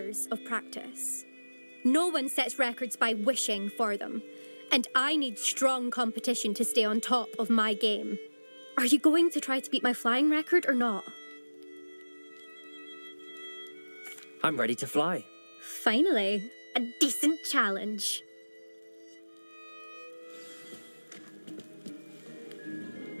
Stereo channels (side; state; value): both; inverted; correlation -1.00